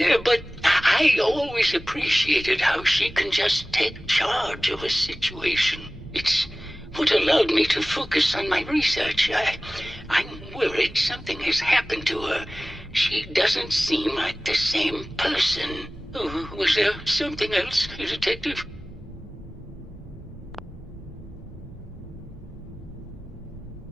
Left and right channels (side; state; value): both; normal; correlation 0.98